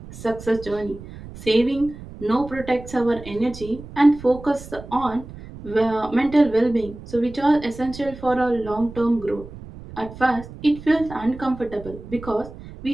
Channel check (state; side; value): noise; right; rumble, 15 dB below the sound